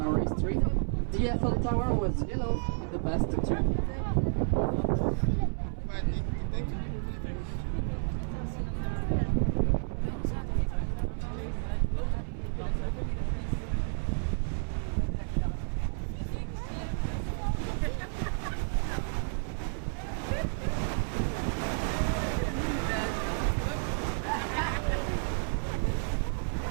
history. The Eiffel Tower was yellow in the past too.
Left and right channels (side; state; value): left; silent; 56 dB below the other